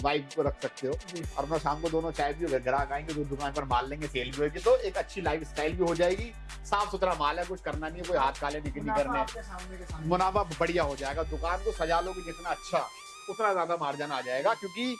को रख सकते हो। और अपना शाम को दोनों चाय पियो, ग्राहक आएंगे तो दुकान पर माल लेंगे, सेल भी होगी, तो एक अच्छी लाइफ स्टाइल भी हो जाएगी। साफ सुथरा माल है, कुछ करना नहीं है, कोई हाथ काले नहीं करने, मुनाफा बढ़िया हो जाएगा। दुकान को सजा लोगे जितना अच्छा, उतना ज्यादा मार्जिन आ जाएगा। क्योंकि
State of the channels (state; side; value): identical; both; correlation 1.00